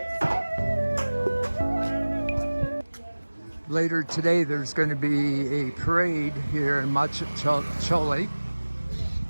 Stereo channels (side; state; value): both; inverted; correlation -1.00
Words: Later today, there's going to be a parade here in Majkhali,